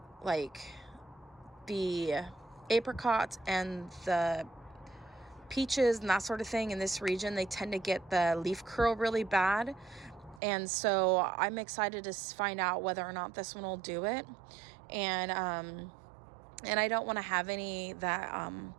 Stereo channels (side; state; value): left; drops out; at 10.4 s